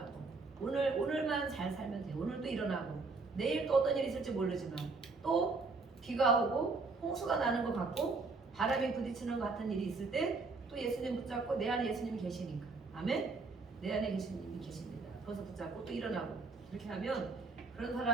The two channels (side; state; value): left; quieter; 4.0 dB